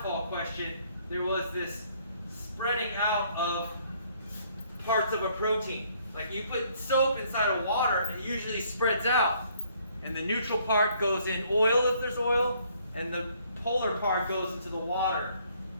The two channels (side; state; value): both; inverted; correlation -0.65